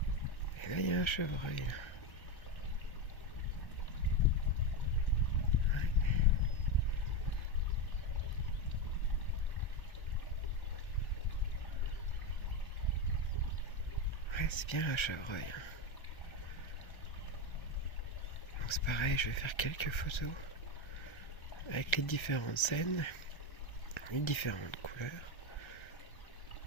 Et là, il y a un chevreuil. Là. Ouais, c'est bien un chevreuil. Hein. Donc c'est pareil, je vais faire quelques photos avec les différentes scènes, les différentes couleurs.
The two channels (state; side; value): late; right; 1.3 ms